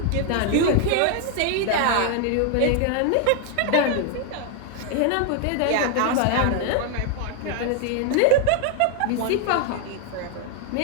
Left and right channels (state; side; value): different; both; correlation 0.00